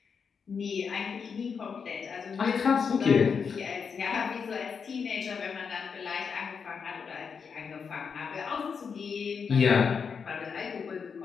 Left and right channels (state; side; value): quieter; right; 6.1 dB